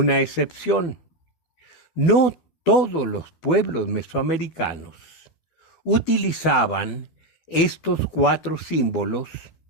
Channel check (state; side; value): late; right; 12 ms